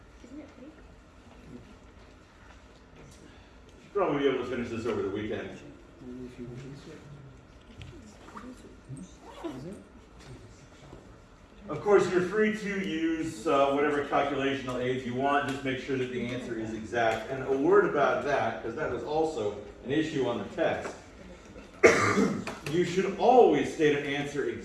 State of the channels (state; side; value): identical; both; correlation 1.00